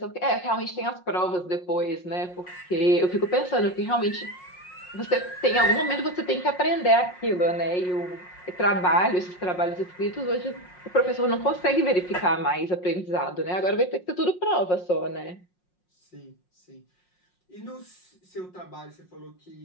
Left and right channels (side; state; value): right; late; 5.5 ms